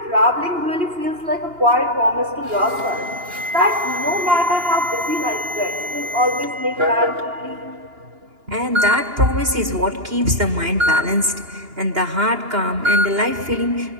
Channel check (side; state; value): left; late; 2.8 ms